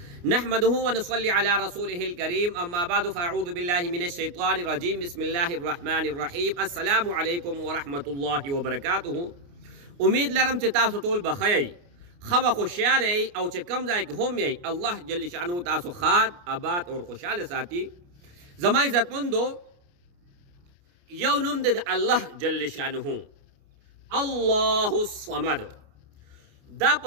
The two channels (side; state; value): left; late; 29 ms